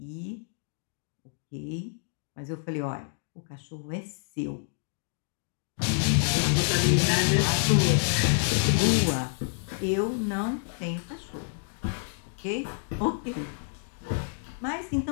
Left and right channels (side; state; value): right; silent; digital silence